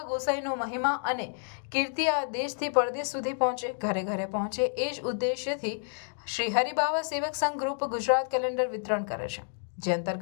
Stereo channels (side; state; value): right; silent; digital silence